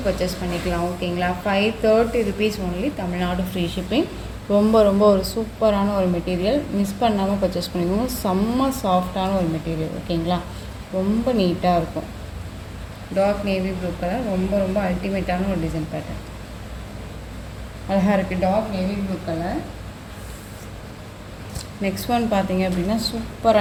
பர்ச்சேஸ் பண்ணிக்கலாம். ஓகேங்களா, 530 rupees only, Tamil Nadu free shipping. ரொம்ப ரொம்ப ஒரு சூப்பரான ஒரு மெட்டீரியல், மிஸ் பண்ணாமல் பர்ச்சேஸ் பண்ணிக்கோங்க. செம்ம சாஃப்டான ஒரு மெட்டீரியல். ஓகேங்களா, ரொம்ப நீட்டாக இருக்கும். டார்க் நேவி ப்ளூ கலர், ரொம்ப ரொம்ப அல்டிமேட்டான ஒரு டிசைன் பேட்டர்ன், அழகாக இருக்குது. Dark navy blue colour. Next one பார்த்தீங்க அப்படின்னா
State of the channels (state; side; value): identical; both; correlation 1.00